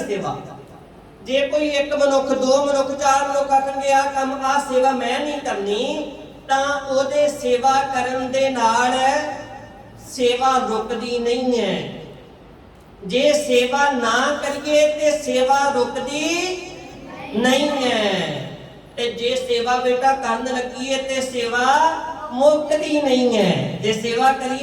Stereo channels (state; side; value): identical; both; correlation 1.00